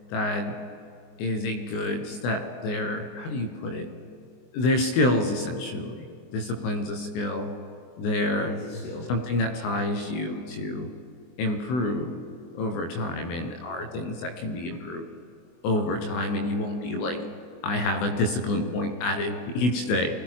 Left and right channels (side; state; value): right; late; 24 ms